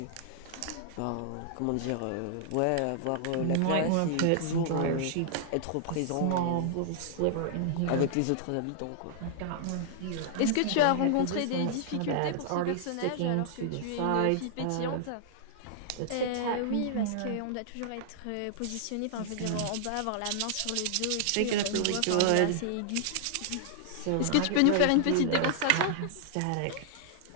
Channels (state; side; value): different; both; correlation -0.01